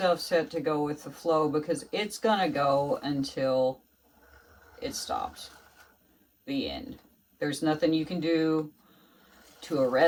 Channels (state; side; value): identical; both; correlation 1.00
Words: set to go with the flow, because it's gonna go until it stops. The end. There's nothing you can do to